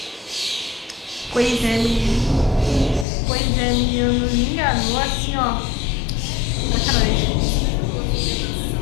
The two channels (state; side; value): drops out; right; at 3.1 s